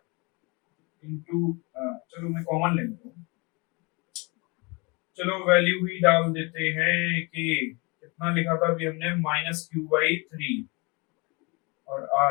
इंटू, चलो मैं कॉमन ले लेता हूं, चलो वैल्यू ही डाल देते हैं कि कितना लिखा था अभी हमने, माइनस क्यू बाई 3 और r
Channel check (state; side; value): quieter; right; 28.7 dB